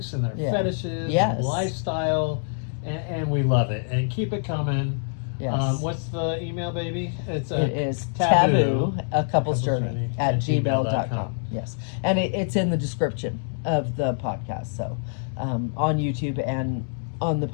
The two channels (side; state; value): right; silent; digital silence